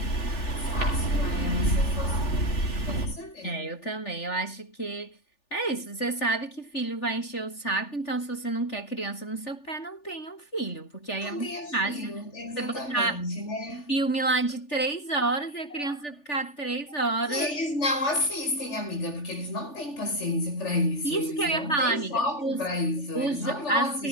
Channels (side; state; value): right; late; 3.4 ms